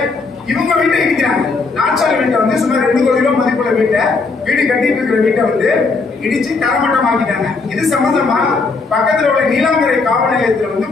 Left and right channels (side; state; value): right; quieter; 4.1 dB